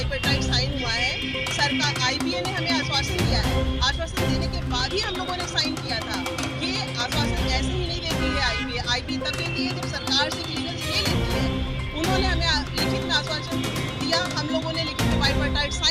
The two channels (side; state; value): both; identical; correlation 1.00